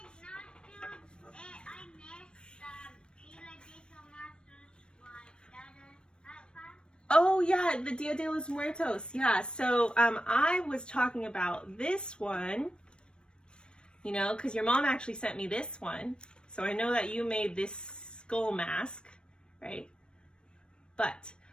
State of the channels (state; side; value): late; right; 0.055 ms